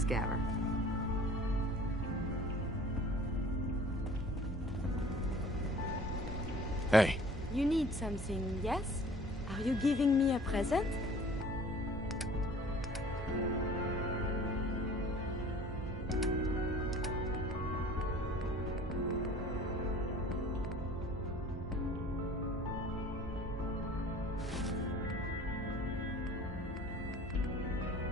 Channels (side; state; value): both; normal; correlation 0.48